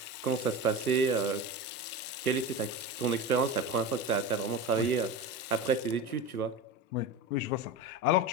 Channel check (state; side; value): normal; both; correlation 0.26